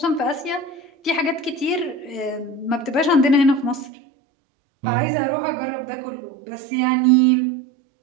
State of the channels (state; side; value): drops out; left; at 3.9 s